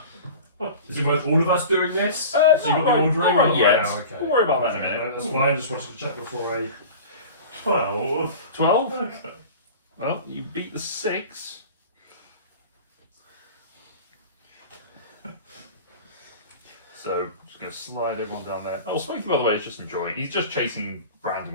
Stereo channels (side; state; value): both; inverted; correlation -0.37